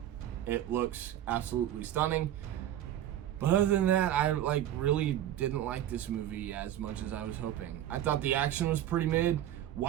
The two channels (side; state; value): left; quieter; 11.8 dB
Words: It looks absolutely stunning. But other than that, I like really didn't like this movie as much as I was hoping. I thought the action was pretty mid.